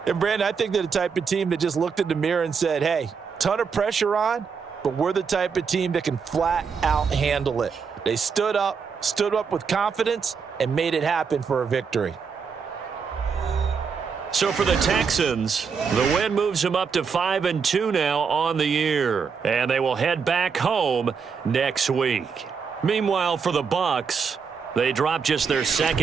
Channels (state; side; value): quieter; left; 5.9 dB